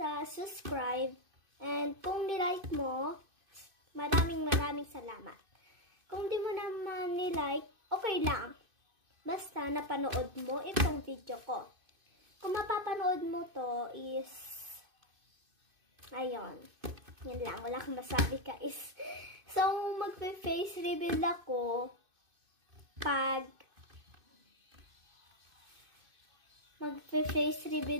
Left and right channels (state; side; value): late; left; 2.5 ms